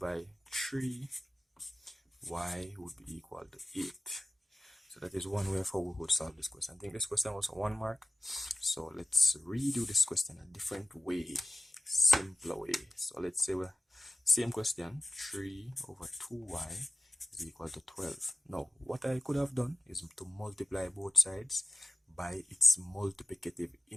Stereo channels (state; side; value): normal; both; correlation 0.95